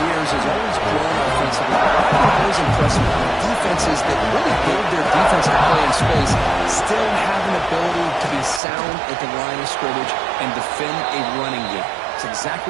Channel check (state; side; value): drops out; left; at 8.6 s